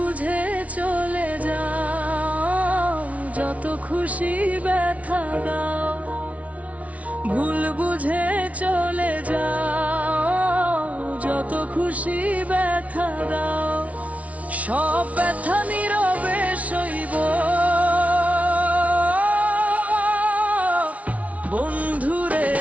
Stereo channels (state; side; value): late; left; 0.067 ms